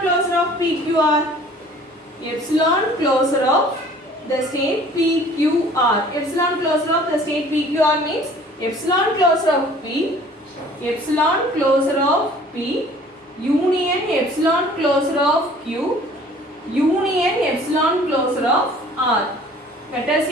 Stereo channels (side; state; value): both; normal; correlation 0.51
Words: of PQR? Epsilon closure of the state PQR. Epsilon closure of the state PQR means epsilon closure of P, epsilon closure of P, union epsilon closure of Q, union epsilon closure of R. That is